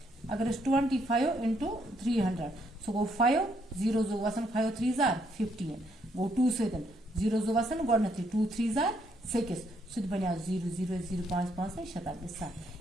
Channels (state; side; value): normal; both; correlation 0.72